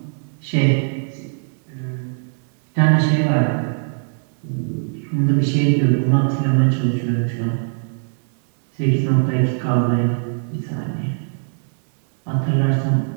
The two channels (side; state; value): left; silent; digital silence